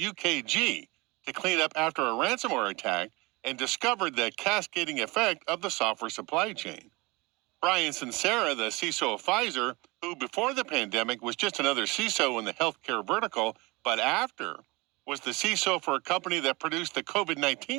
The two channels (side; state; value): left; quieter; 24.4 dB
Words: to clean up after a ransomware attack and discovered the cascading effect of the software supply chain. Brian Sincera, the CISO of Pfizer, who before the pandemic was just another CISO in the healthcare vertical, but after was the CISO for a company that produced the